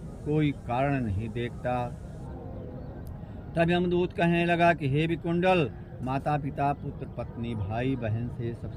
कोई कारण नहीं देखता। तब यमदूत कहने लगा कि हे विकुंडल, माता पिता, पुत्र पत्नी, भाई बहन से सब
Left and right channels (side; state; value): both; identical; correlation 1.00